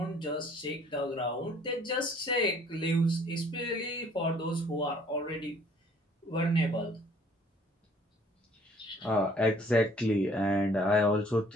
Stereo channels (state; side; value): normal; both; correlation 0.58